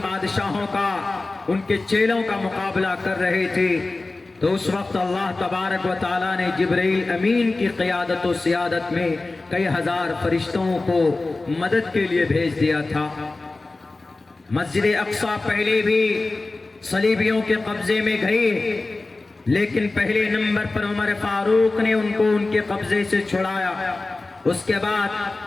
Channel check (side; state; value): right; quieter; 3.3 dB